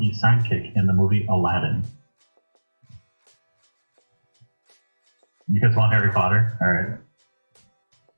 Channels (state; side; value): inverted; both; correlation -1.00